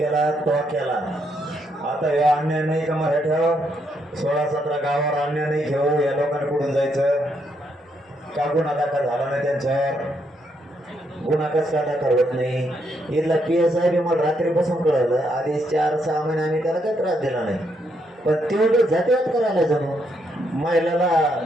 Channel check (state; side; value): normal; both; correlation 0.76